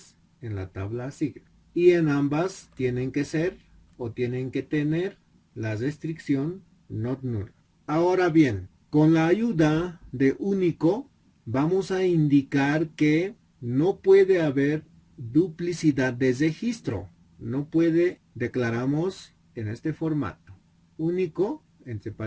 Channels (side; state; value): both; identical; correlation 1.00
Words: en la tabla asigna. Y en ambas tienen que ser o tienen que tener la restricción not null. Ahora bien, con la ayuda de único vamos a indicar que no puede haber duplicidad de registro. No puede, declaramos en este formato. Único, entre